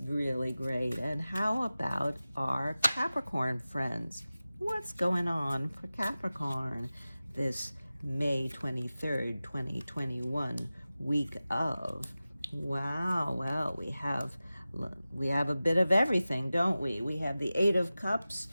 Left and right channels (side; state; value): both; inverted; correlation -0.96